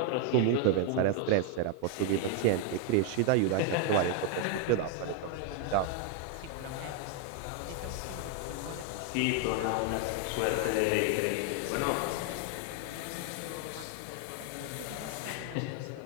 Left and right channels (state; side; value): different; both; correlation 0.00